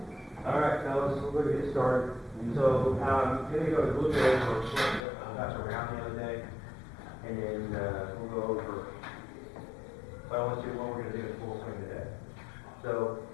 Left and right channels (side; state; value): right; drops out; at 5.1 s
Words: All right, fellas, so we're going to get started. So, I'm going to go a little bit over what got around the other day, and then we'll go over what I want to do, what we're going to do in full swing today. So,